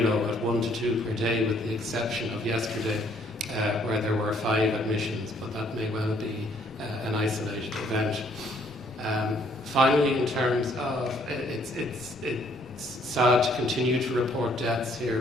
low at 1 to 2 per day, with the exception of yesterday, where there were 5 admissions, but that may well be an isolated event. Finally, in terms of, it's sad to continue to report deaths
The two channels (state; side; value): normal; both; correlation 0.65